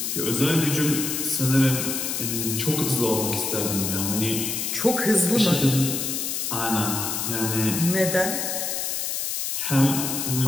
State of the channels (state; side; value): noise; left; hiss, 2 dB below the sound